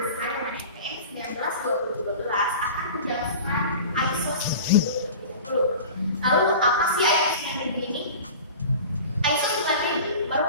desain MNN 19-2012 akan menjelaskan ISO 9000. Lalu apa sih ISO 9000 ini? ISO 9000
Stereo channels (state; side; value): inverted; both; correlation -0.37